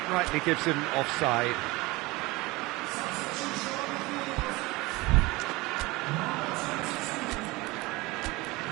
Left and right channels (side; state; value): left; quieter; 22.1 dB